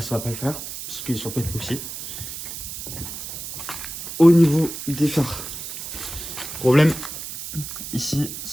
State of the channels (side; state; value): right; noise; hiss, 8 dB below the sound